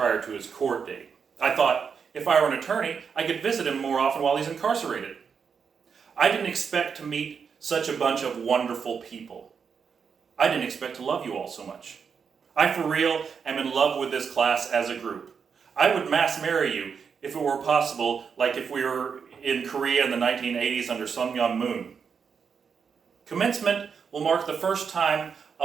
to his court date. I thought if I were an attorney, I could visit him more often while he's incarcerated. I didn't expect to meet such a bunch of wonderful people. I didn't expect to love you all so much. I for real am in love with this class as a group. I would mass marry you if it were possible, like if we were in Korea in the 1980s under Sun Myung Moon. Commencement will mark the first time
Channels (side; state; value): left; quieter; 6.3 dB